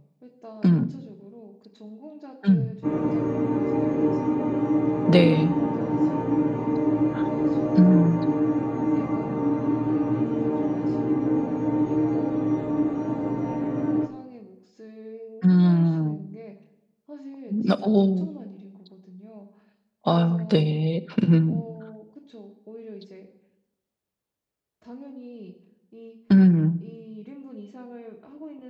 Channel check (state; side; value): identical; both; correlation 1.00